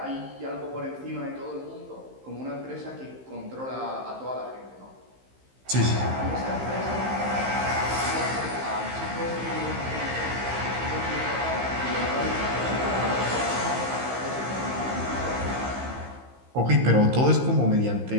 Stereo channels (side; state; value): left; late; 15 ms